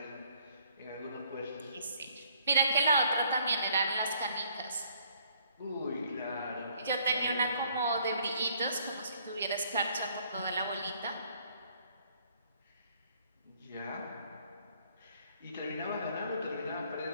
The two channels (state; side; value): inverted; both; correlation -0.64